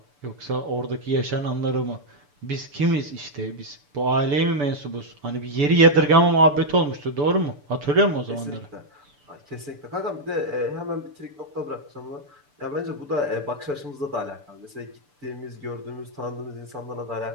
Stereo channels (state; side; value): late; left; 6.9 ms